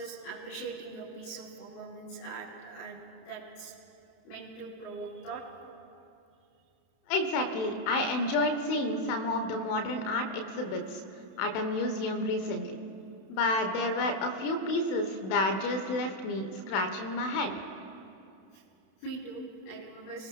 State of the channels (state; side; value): late; right; 31 ms